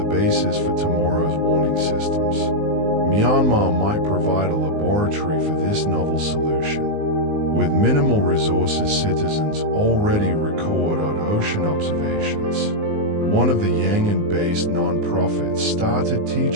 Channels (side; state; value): left; late; 19 ms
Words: basis for tomorrow's warning systems. Myanmar might provide a laboratory for this novel solution. With minimal resources, citizens already record on ocean observations. One of the Yangon-based non-profits started